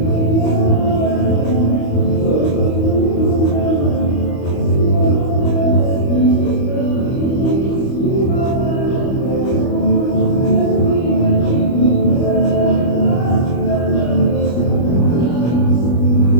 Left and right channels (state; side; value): late; right; 25 ms